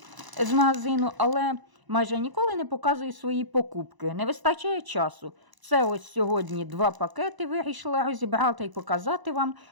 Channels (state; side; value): late; left; 1.0 ms